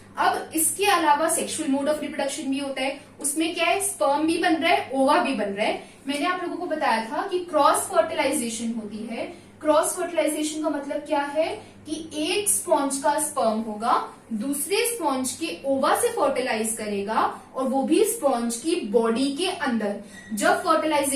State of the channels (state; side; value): identical; both; correlation 1.00